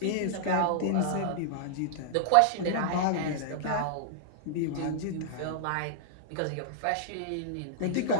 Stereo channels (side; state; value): both; different; correlation -0.01